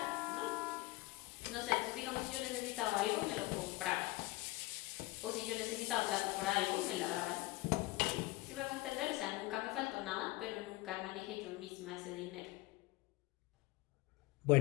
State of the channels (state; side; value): quieter; right; 20.5 dB